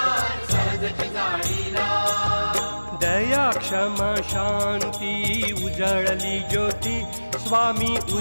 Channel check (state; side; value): inverted; both; correlation -1.00